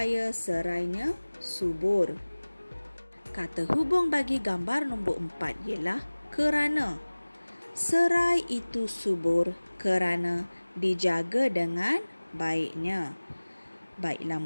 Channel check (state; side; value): inverted; both; correlation -1.00